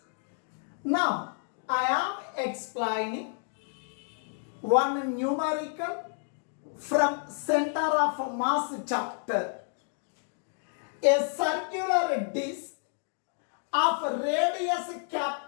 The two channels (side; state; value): right; silent; 58 dB below the other